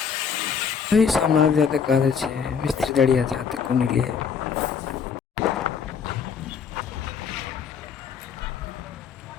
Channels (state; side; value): quieter; right; 6.6 dB